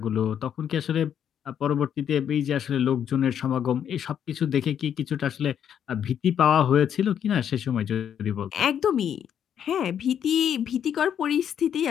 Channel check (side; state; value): right; quieter; 9.0 dB